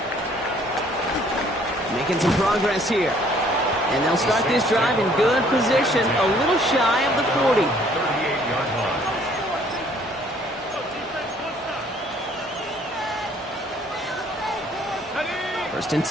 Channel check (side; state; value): both; normal; correlation 0.60